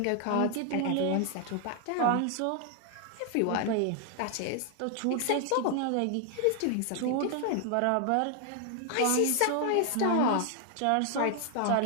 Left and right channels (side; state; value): both; different; correlation 0.00